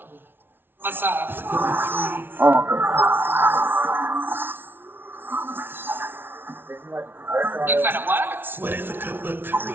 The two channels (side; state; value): left; late; 0.10 ms